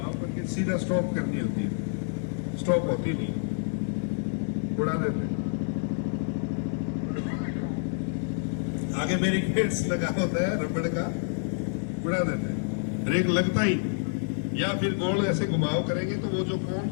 करके सीधा स्टॉप करनी होती है, स्टॉप होती नहीं, उड़ा देते। आगे बैरिकेड्स लगा होता है रबड़ का, उड़ा देते हैं, ब्रेक लगता ही, या फिर गोल ऐसे घुमाव करेंगे तो वो जो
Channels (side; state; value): right; silent; digital silence